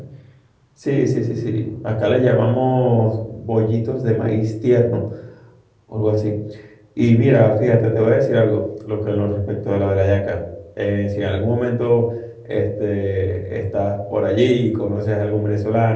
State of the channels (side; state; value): both; identical; correlation 1.00